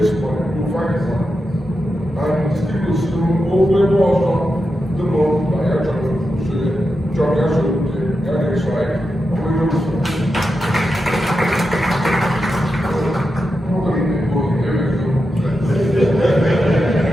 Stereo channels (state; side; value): normal; both; correlation 0.88